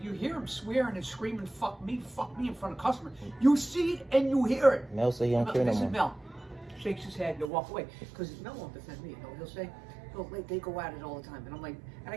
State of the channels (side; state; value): left; drops out; at 7.5 s